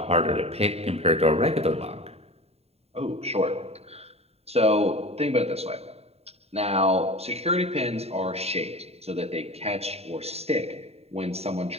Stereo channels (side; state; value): left; late; 0.30 ms